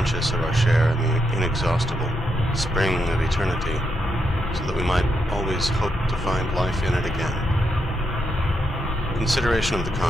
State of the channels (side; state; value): both; normal; correlation 0.82